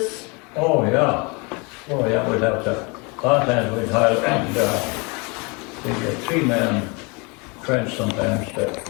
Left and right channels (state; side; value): quieter; right; 30.1 dB